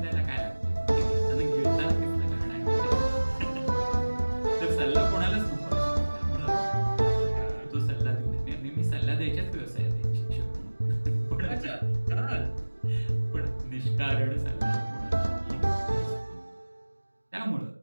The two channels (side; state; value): both; inverted; correlation -1.00